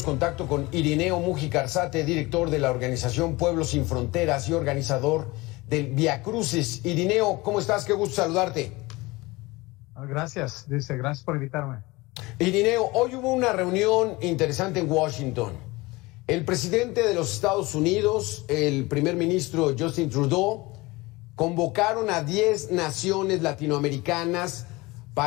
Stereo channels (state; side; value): quieter; right; 22.2 dB